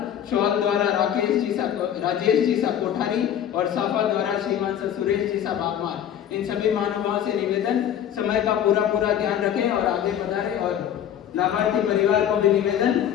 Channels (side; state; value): right; quieter; 9.9 dB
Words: शॉल द्वारा राजेश जी सा कोठारी और साफा द्वारा श्रीमान सा सुरेश जी सा बागमार। इन सभी महानुभावों से निवेदन समय का पूरा ध्यान रखें और आगे बढ़ाएं और लाभार्थी परिवार को भी निवेदन